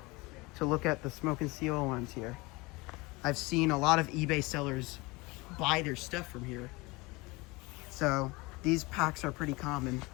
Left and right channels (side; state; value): right; quieter; 24.0 dB